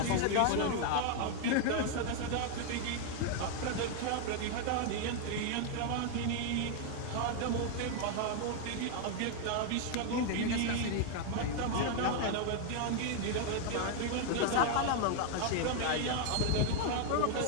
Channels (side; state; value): both; different; correlation 0.00